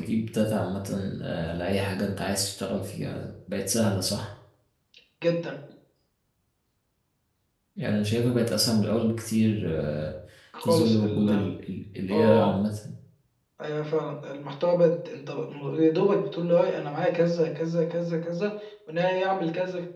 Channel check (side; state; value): both; identical; correlation 1.00